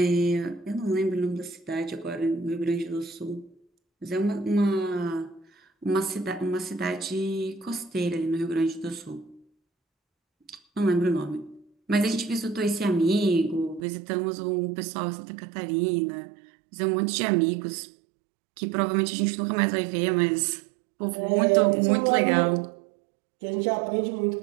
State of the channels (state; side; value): drops out; left; at 13.8 s